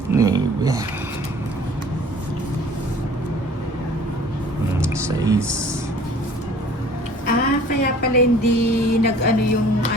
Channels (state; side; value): normal; both; correlation 0.50